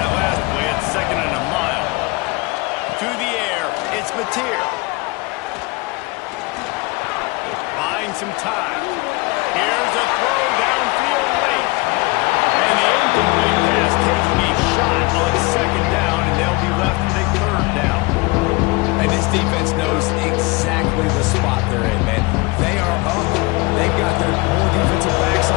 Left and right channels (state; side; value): quieter; right; 25.4 dB